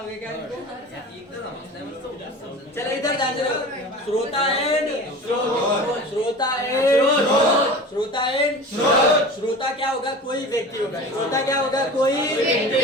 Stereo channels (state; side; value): normal; both; correlation 0.36